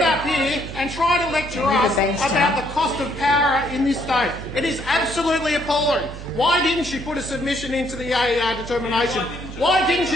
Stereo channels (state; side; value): noise; right; hum, 12 dB below the sound